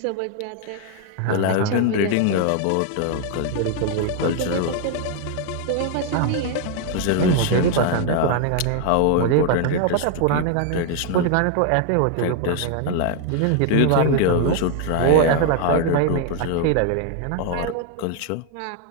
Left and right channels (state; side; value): different; both; correlation 0.01